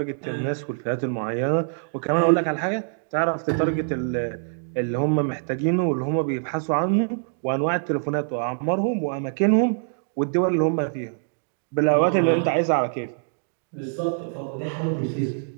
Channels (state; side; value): silent; left; digital silence